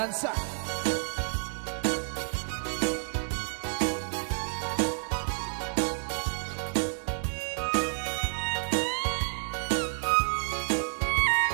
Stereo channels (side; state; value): left; silent; 58 dB below the other